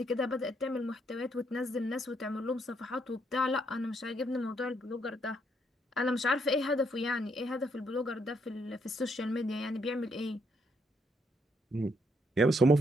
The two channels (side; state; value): both; normal; correlation 0.73